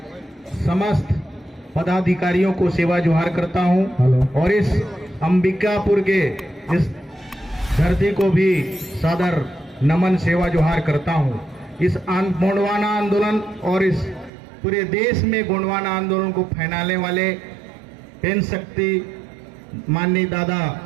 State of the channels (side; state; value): left; drops out; at 14.3 s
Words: समस्त पदाधिकारियों को सेवा जोहार करता हूं और इस अंबिकापुर के इस धरती को भी सादर नमन सेवा जोहार करता हूं। इस गोंडवाना आंदोलन और इस पूरे देश में गोंडवाना आंदोलन को फैलाने वाले पेन शक्ति माननीय दादा